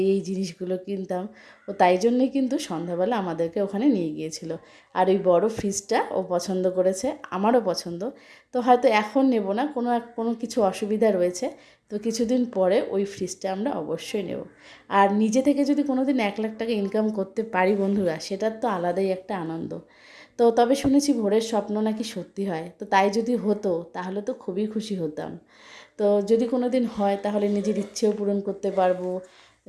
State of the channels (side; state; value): both; identical; correlation 1.00